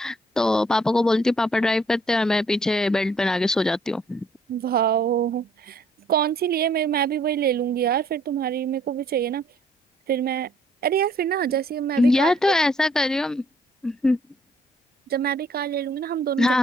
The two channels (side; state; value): both; normal; correlation 0.63